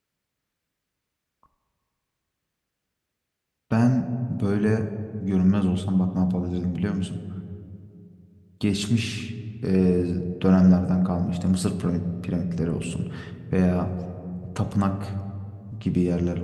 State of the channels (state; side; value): identical; both; correlation 1.00